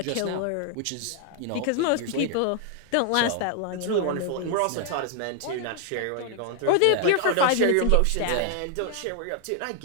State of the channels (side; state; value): both; different; correlation 0.00